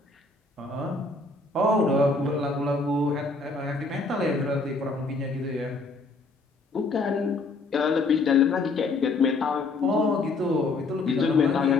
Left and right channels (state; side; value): quieter; right; 3.6 dB